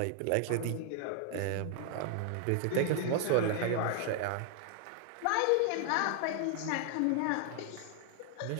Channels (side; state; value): both; different; correlation 0.00